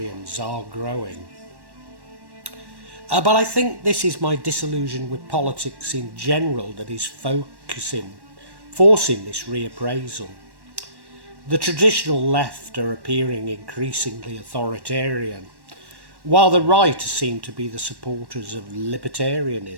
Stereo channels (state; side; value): late; left; 1.1 ms